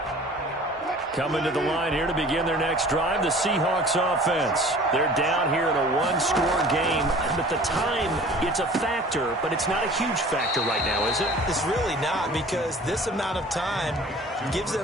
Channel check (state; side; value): normal; both; correlation 0.46